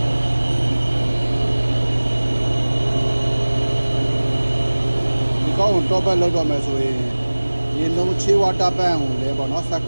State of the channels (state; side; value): inverted; both; correlation -1.00